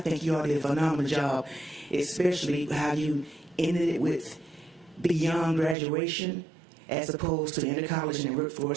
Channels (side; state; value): left; drops out; at 5.8 s